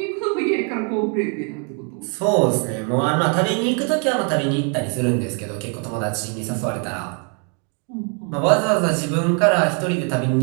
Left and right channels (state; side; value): quieter; left; 38.7 dB